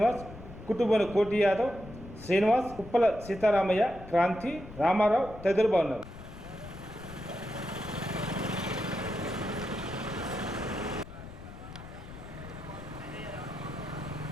కుటుంబ కోటి యాదవ్, శ్రీనివాస్, కుప్పల సీతారామయ్య, క్రాంతి, రామారావు తదితరులు బాగున్నారు.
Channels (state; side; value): noise; left; rumble, 14 dB below the sound